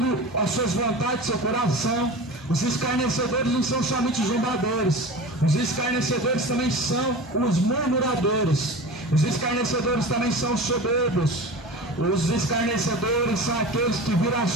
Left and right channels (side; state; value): both; normal; correlation 0.33